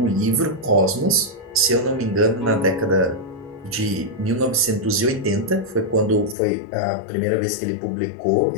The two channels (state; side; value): drops out; right; at 6.4 s